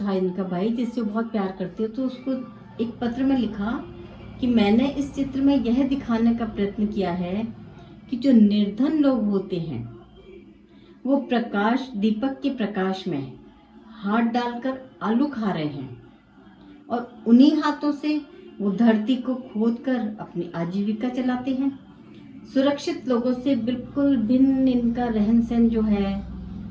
इनका भाई, जिससे वो बहुत प्यार करते हो, तो उसको एक पत्र में लिखा कि मैंने इस चित्र में यह दिखाने का प्रयत्न किया है कि जो निर्धन लोग होते हैं वो प्रकाश, दीपक के प्रकाश में हाथ डालकर आलू खा रहे हैं और उन्हीं हाथों से वो धरती को खोदकर अपनी आजीविका चलाते हैं। सुरक्षित लोगों से बिल्कुल भिन्न इनका रहन सहन जो है,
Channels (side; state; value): both; identical; correlation 1.00